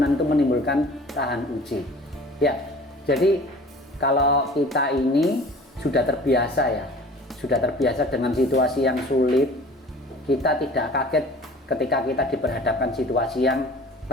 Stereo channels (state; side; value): normal; both; correlation 0.45